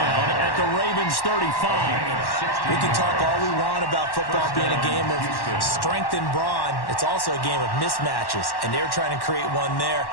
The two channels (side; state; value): right; late; 1.1 ms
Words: at the Ravens 35. We can talk all we want about football being a game of strength and brawn. It's also a game of mismatches. And they're trying to create one there,